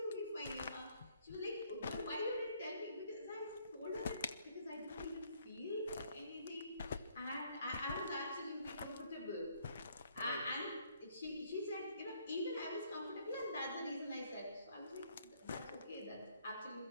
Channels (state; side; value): inverted; both; correlation -0.66